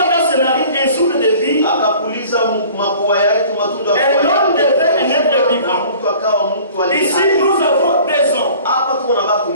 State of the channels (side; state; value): both; inverted; correlation -0.48